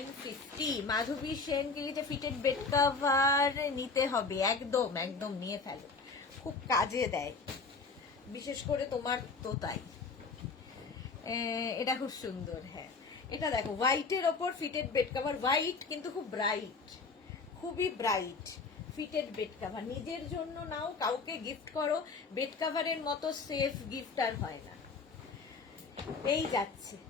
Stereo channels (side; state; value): right; quieter; 4.4 dB